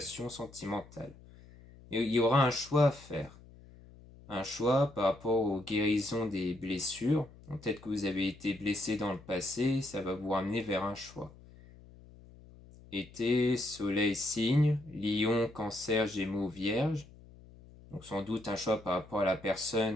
sentimentale. Et il y aura un choix à faire. Un choix par rapport aux guérisons des blessures. Peut-être que vous avez été blessé dans le passé, ça va vous ramener vers un choix. Été, soleil, signe, lion, cancer, gémeaux, vierge. Donc sans doute un choix par rapport à la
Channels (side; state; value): left; noise; hum, 21 dB below the sound